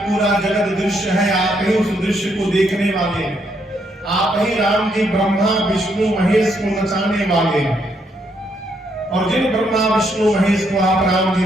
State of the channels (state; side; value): normal; both; correlation 0.75